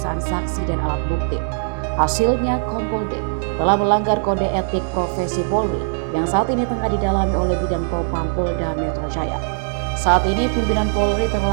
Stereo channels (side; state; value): left; silent; 57 dB below the other